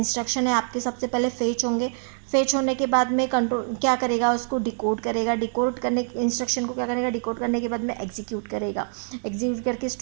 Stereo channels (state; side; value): silent; left; digital silence